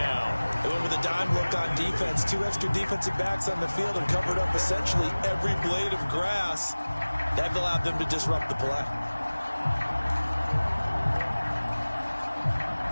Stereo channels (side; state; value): both; inverted; correlation -1.00